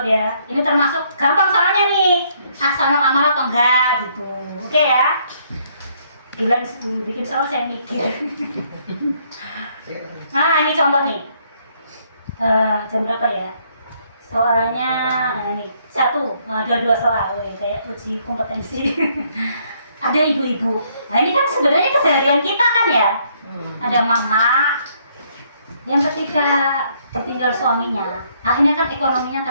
ya. Ini termasuk gampang soalnya nih. Ahsanul amal atau enggak gitu. Oke ya. Bilang bikin soal saya mikir. Nah, ini contoh nih. Jam berapa ya? Soalnya ini dua soal, kayak uji kompetensi. Ada ibu-ibu. Nah ini kan sebenarnya keseharian kita kan ya. Ada mama yang ketika ditinggal suaminya, akhirnya kan ekonominya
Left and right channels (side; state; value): both; inverted; correlation -0.68